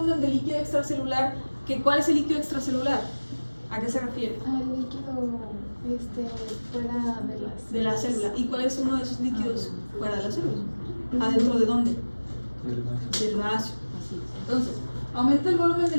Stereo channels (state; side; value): inverted; both; correlation -1.00